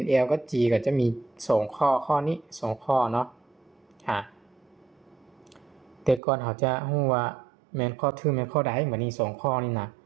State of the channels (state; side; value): drops out; left; at 6.2 s